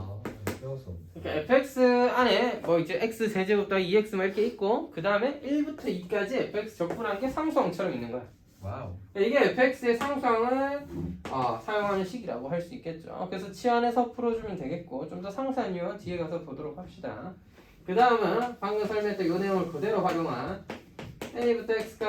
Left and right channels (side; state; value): both; identical; correlation 1.00